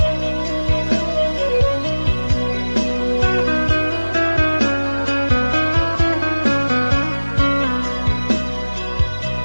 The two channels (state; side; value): inverted; both; correlation -1.00